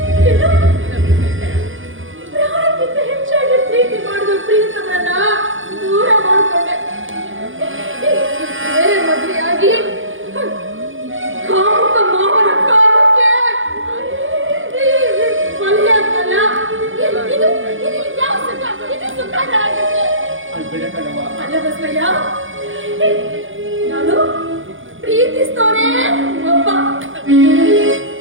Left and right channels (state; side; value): late; left; 0.57 ms